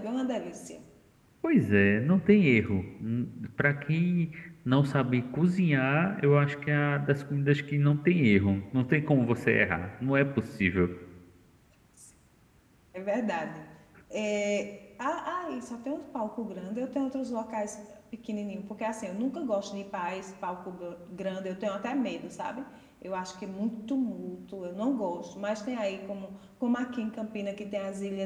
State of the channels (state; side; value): identical; both; correlation 1.00